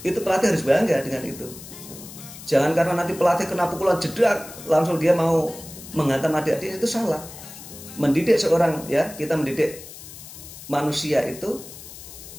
pelatih harus bangga dengan itu. Jangan karena nanti pelatih kena pukulan jedak langsung dia mau menghantam adik-adik, itu salah. Mendidik seorang, ya, kita mendidik manusia itu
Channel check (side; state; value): left; noise; hiss, 15 dB below the sound